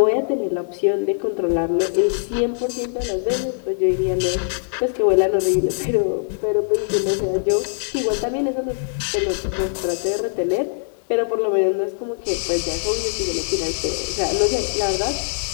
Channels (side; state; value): right; silent; digital silence